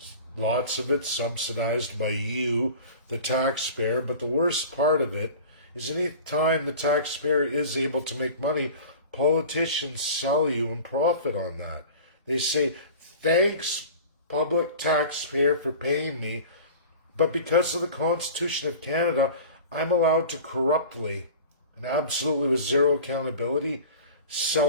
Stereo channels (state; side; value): inverted; both; correlation -0.39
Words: lots of it subsidized by you, the taxpayer, but the worst part of it is any time the taxpayer is able to make money, politicians sell you and profit on that. They say, thanks, public taxpayer, for paying me, but because of the Constitution of Canada, I'm allowed to corruptly and absolutely with zero accountability